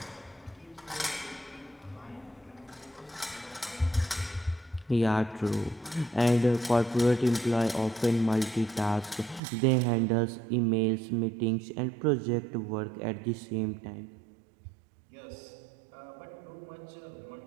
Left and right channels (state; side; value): drops out; left; at 9.4 s